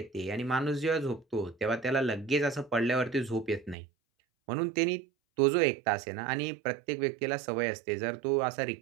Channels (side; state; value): left; drops out; at 3.8 s